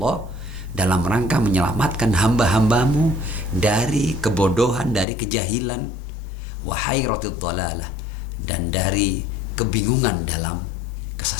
dalam rangka menyelamatkan hamba-hambamu dari kebodohan, dari kejahilan, wa hayratid dalalah, dan dari kebingungan dalam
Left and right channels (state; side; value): drops out; right; at 5.1 s